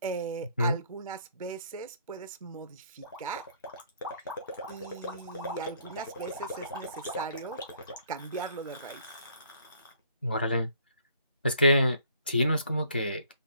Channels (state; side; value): inverted; both; correlation -0.63